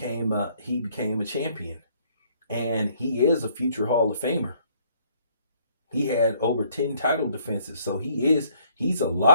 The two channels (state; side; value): inverted; both; correlation -0.64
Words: a champion, and he is a future Hall of Famer. He had over 10 title defenses, so he's a